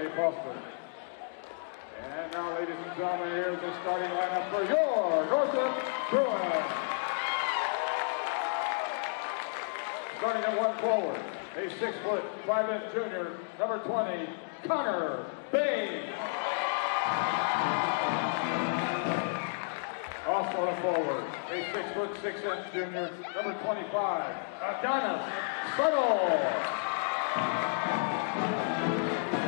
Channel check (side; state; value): right; silent; digital silence